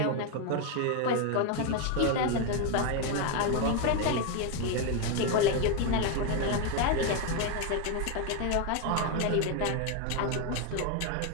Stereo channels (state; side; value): different; both; correlation 0.02